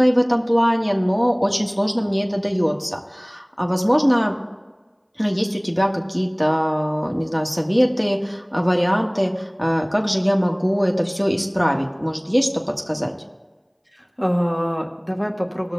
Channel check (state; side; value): identical; both; correlation 1.00